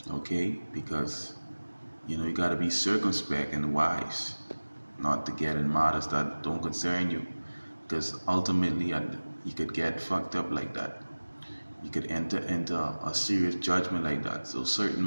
Okay, because you know you got to be circumspect and wise, not to get in matters that don't concern you, because ultimately you could get fucked up like that. You could enter into a serious judgment like that. So certain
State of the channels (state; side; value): inverted; both; correlation -1.00